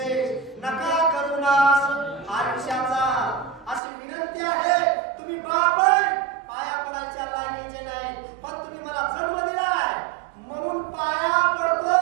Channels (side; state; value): left; drops out; at 3.8 s